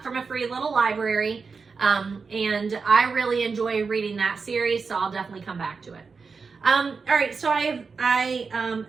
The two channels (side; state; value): left; quieter; 4.9 dB